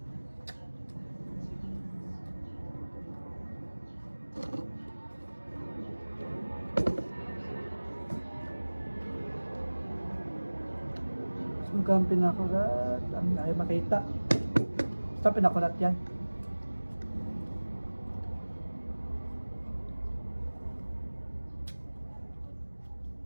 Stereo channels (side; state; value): both; inverted; correlation -1.00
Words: Sungkang pinakurat. Ang ayaw makita. Basta pinakurat yan.